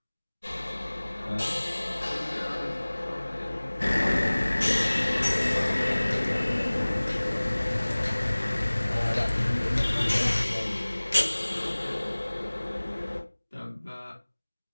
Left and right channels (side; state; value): both; inverted; correlation -1.00